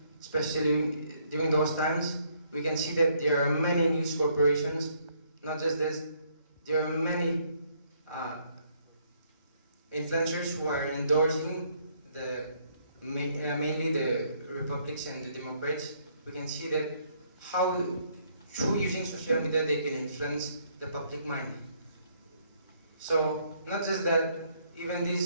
especially during those times. We can see that there are many news corporations. Not just this, there are many influencers who are endorsing mainly the Republicans and the Democrats. We can see that how through using social media they can influence the public mind. So not just that, even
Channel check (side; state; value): both; inverted; correlation -0.68